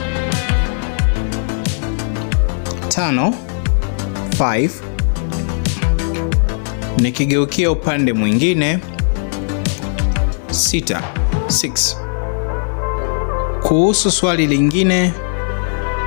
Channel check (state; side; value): silent; right; 56 dB below the other